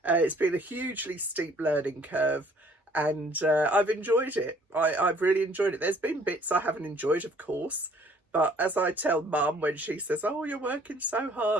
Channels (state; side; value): normal; both; correlation 0.58